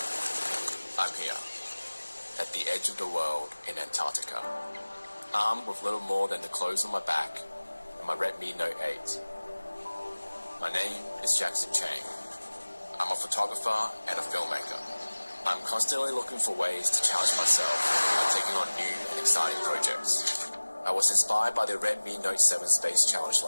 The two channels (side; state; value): both; inverted; correlation -1.00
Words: I'm here, at the edge of the world in Antarctica, armed with little more than the clothes on my back and my Redmi Note 8. My name is Jackson Chang. I'm a photographer and a filmmaker. I'm constantly looking for ways to challenge myself by taking on new and exciting projects. I was inspired by the Redmi Note 7 Space Challenge